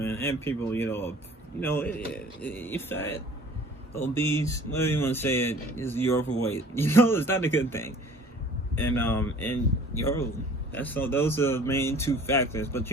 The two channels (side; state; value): both; normal; correlation 0.49